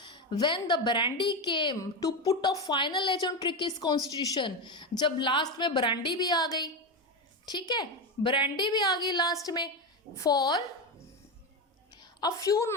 When the brandy came to put a final edge on Tricky's constitution, जब लास्ट में ब्रांडी भी आ गई, ठीक है, ब्रांडी भी आ गई लास्ट में। For a few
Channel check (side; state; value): both; normal; correlation 0.14